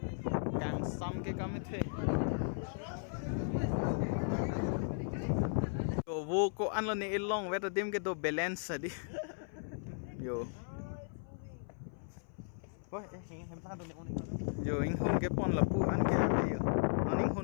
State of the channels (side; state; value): right; silent; 54 dB below the other